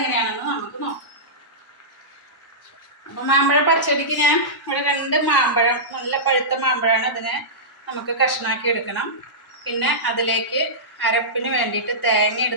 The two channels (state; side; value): normal; both; correlation -0.16